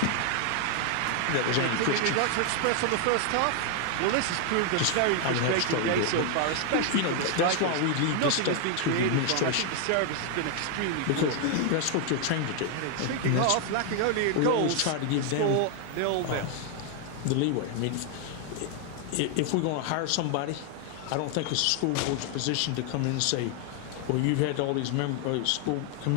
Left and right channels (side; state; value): both; different; correlation 0.00